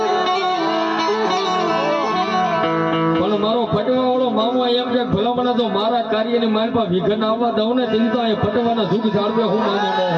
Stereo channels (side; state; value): both; identical; correlation 1.00